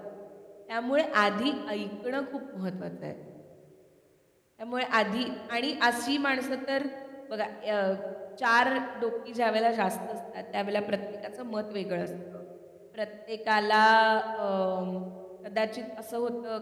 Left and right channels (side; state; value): both; identical; correlation 1.00